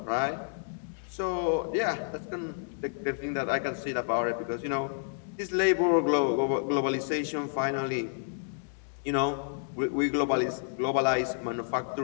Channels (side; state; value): right; silent; digital silence